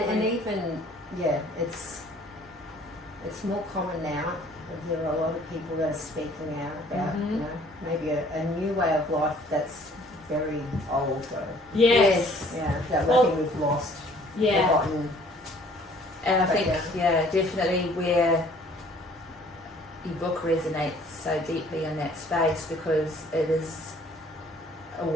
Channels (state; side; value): normal; both; correlation 0.56